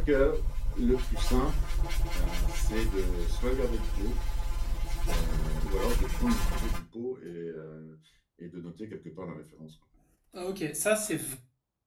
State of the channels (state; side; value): identical; both; correlation 1.00